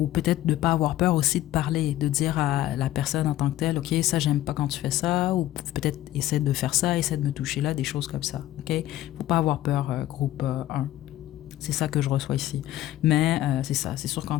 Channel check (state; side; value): quieter; right; 14.3 dB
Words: peut-être de ne pas avoir peur aussi de parler, de dire à la personne en tant que telle, OK, ça, j'aime pas quand tu fais ça, ou peut-être essaie de faire ça, essaie de me toucher là, des choses comme ça. OK? Faut pas avoir peur, groupe 1. C'est ça que je reçois ici. Mais c'est ça, c'est sûr qu'en